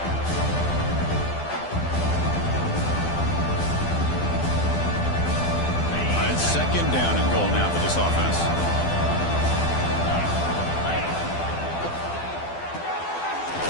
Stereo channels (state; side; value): late; right; 12 ms